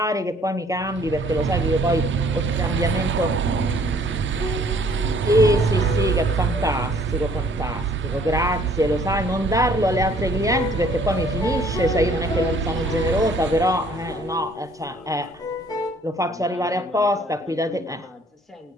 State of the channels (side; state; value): both; normal; correlation 0.59